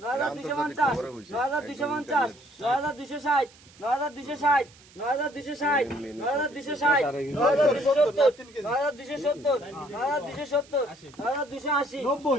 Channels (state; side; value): noise; right; hiss, 25 dB below the sound